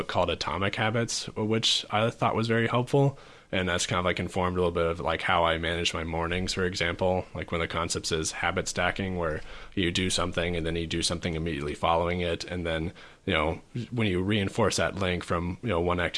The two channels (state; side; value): identical; both; correlation 1.00